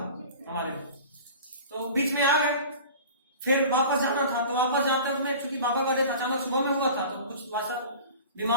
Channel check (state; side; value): inverted; both; correlation -0.39